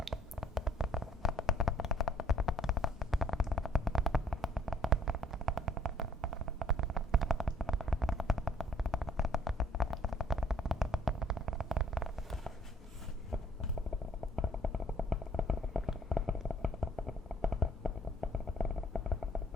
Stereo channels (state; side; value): normal; both; correlation 0.61